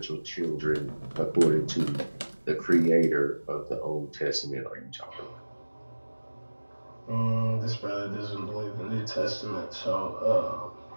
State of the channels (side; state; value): both; inverted; correlation -1.00